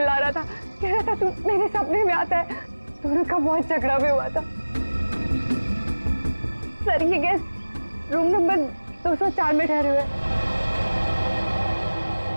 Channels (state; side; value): inverted; both; correlation -1.00